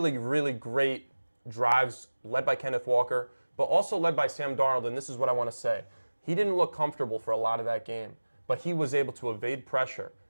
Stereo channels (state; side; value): inverted; both; correlation -1.00